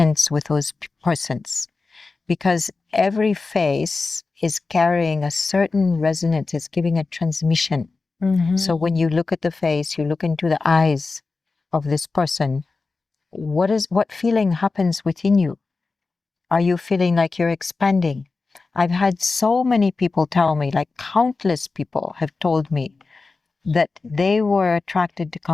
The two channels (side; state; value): right; quieter; 4.0 dB